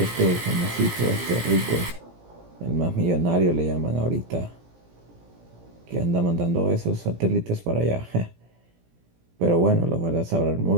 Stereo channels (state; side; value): late; left; 17 ms